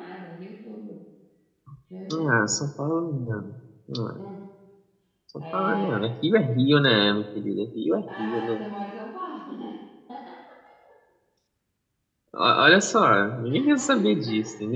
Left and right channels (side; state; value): both; identical; correlation 1.00